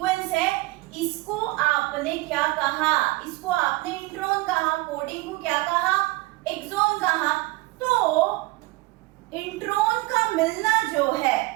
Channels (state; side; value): quieter; left; 21.6 dB